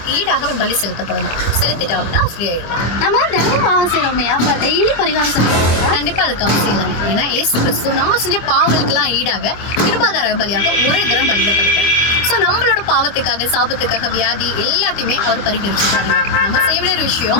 ஈடாக அவன் பலி செலுத்தப்படணும். செலுத்திட்டா அப்படின்னா ஃப்ரீ ஆயிடலாம். நம்ம தினமும் பாவம் செய்யறோமே, அப்ப டெய்லி பரிகாரம் செலுத்துறோம். கண்டிப்பா அதுக்கு அவசியம் இல்லை. ஏன்னா இயேசு கிறிஸ்து நம்ம செஞ்ச பாவங்களுக்கெல்லாம் ஈடாக கிருபாதார பலியாக ஒரே தரம் பலியிடப்படுகிறார். ஸோ நம்மளோட பாவத்துக்காக, சாபத்துக்காக, வியாதி எல்லாத்தையுமே அவர் பரிகரிச்சுட்டாரு. நம்ம செய்ய வேண்டிய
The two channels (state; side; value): late; right; 25 ms